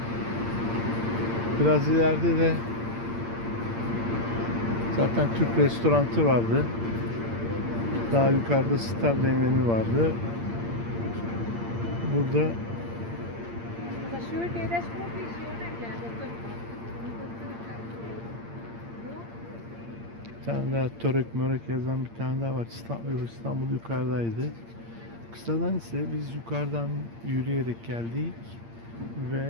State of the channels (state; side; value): late; left; 8.7 ms